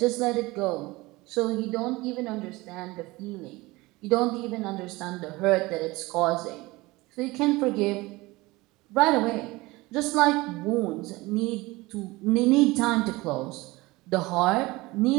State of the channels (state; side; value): quieter; left; 21.4 dB